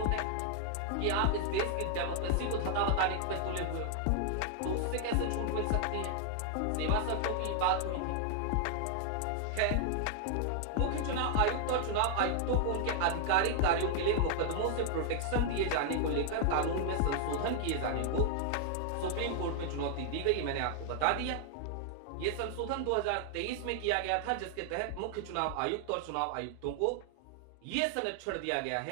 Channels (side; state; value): both; different; correlation 0.00